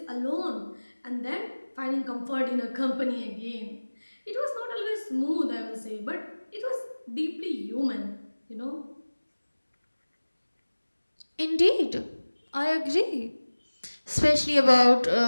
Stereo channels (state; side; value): inverted; both; correlation -1.00